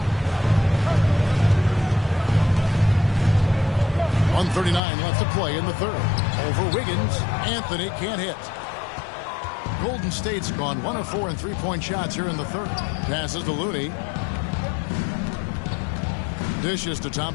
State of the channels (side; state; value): right; drops out; at 4.8 s